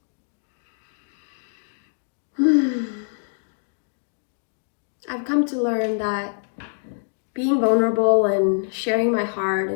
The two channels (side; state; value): right; silent; digital silence